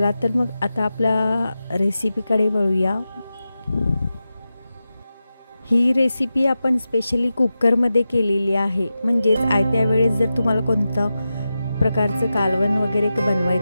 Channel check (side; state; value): both; inverted; correlation -0.92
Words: तर मग आता आपल्या रेसिपीकडे वळूया। ही रेसिपी आपण स्पेशली कुकरमध्ये केलेली आहे, म्हणजेच आयत्या वेळेस जर तुम्हाला कोणतं प्रकारचं कालवण वगैरे